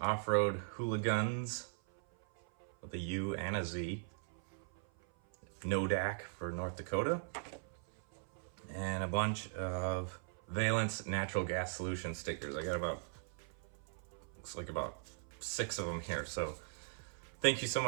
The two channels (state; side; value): silent; left; 51 dB below the other